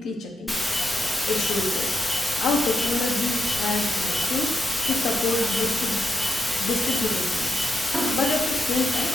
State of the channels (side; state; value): both; normal; correlation 0.85